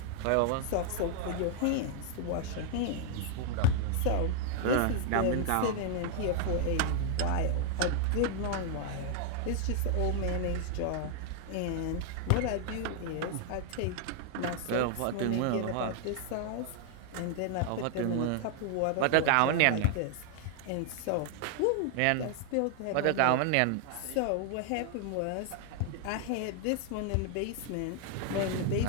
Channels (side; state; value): both; different; correlation 0.00